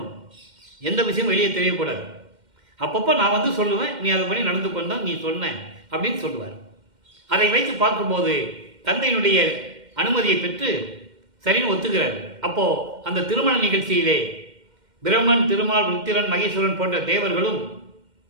எந்த விஷயமும் வெளியே தெரியக்கூடாது. அப்பப்போ நான் சொல்லுவேன், நீ அதை பண்ணி நடந்து கொண்டா நீ சொன்ன அப்படின்னு சொல்லுவார். அதை வைத்து பார்க்கும்போது தந்தையினுடைய அனுமதியை பெற்று சரின்னு ஒத்துக்கிறார். அப்போது அந்த திருமண நிகழ்ச்சியிலே பிரம்மன், திருமால், ருத்திரன், மகேஸ்வரன் போன்ற தேவர்களும்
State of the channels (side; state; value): left; late; 2.1 ms